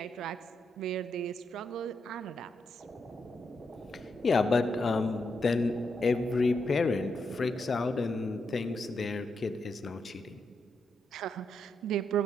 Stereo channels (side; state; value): both; normal; correlation 0.82